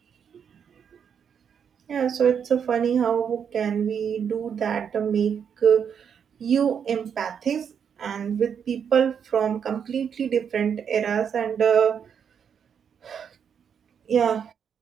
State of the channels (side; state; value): left; quieter; 7.5 dB